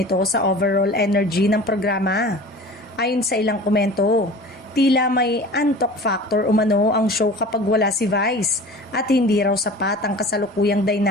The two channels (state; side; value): normal; both; correlation 0.40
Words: sa overall energy ng programa. Ayon sa ilang komento, tila may antok factor umano ang show kapag wala si Vice at hindi raw sapat ang kasalukuyang